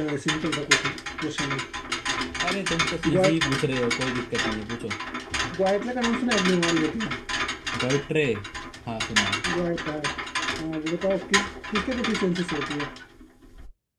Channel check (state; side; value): identical; both; correlation 1.00